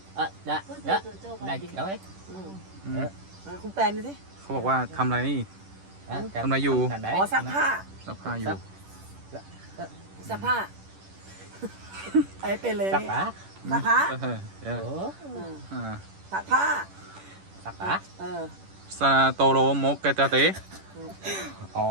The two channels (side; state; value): left; late; 10 ms